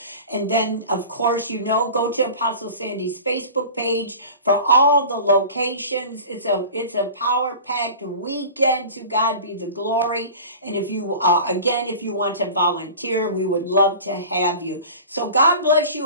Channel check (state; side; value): inverted; both; correlation -0.37